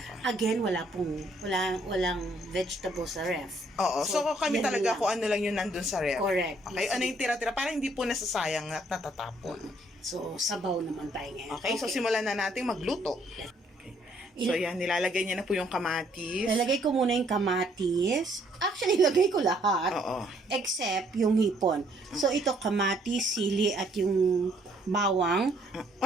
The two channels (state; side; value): normal; both; correlation 0.66